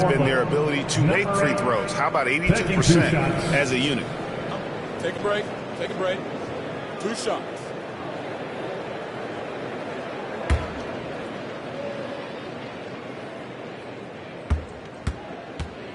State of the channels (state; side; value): identical; both; correlation 1.00